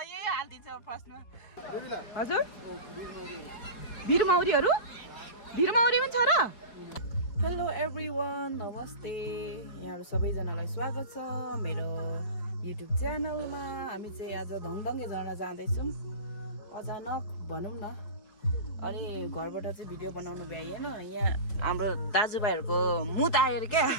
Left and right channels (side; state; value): right; late; 4.7 ms